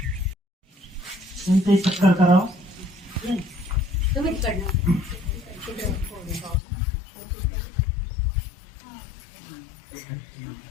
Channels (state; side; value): drops out; right; at 6.6 s